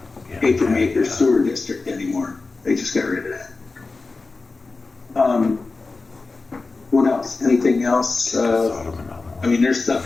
Paper Maker Sewer District anymore. They just got rid of that. What else? Anything else? I mean, there's stuff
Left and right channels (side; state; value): right; quieter; 3.8 dB